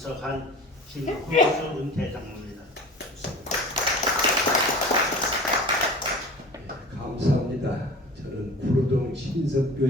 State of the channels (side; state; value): both; normal; correlation 0.39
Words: 김흥수 은퇴 장로입니다. 감사합니다. 저는 구로동